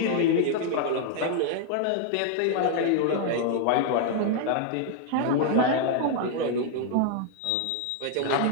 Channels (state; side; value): different; both; correlation 0.00